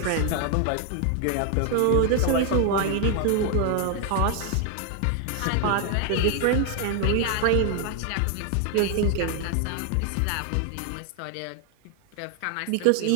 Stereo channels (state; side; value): different; both; correlation 0.00